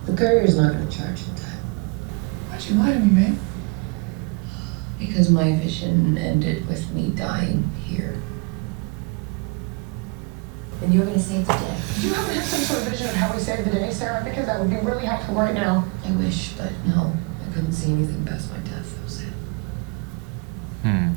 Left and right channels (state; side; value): quieter; left; 29.3 dB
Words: The courier's not going to charge you that. Why'd you lie to me, babe? Because my vision ended with me dying here. And you're gonna save the day. Do you happen to have some sort of vision of how we saved the day, Sarah? Because that would be really helpful right now. I wish, but no. I couldn't see anything past my death. That was it.